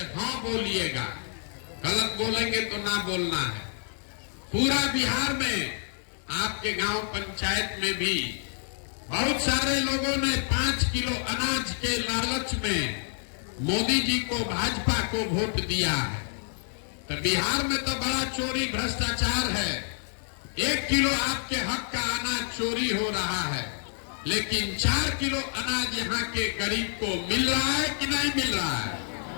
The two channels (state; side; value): silent; right; 59 dB below the other